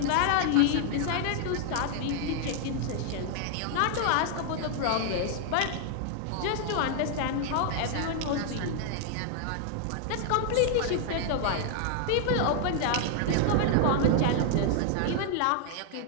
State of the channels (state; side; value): different; both; correlation 0.00